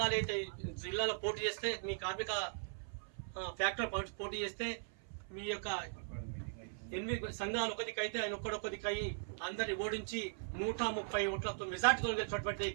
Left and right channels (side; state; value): left; silent; 52 dB below the other